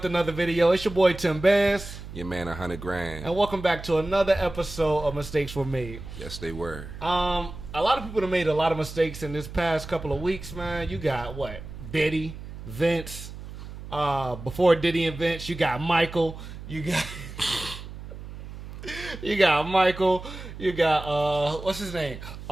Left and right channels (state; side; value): noise; right; hum, 12 dB below the sound